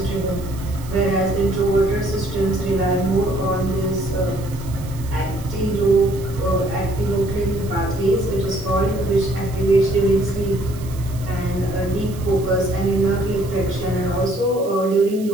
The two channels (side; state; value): right; noise; hiss, 19 dB below the sound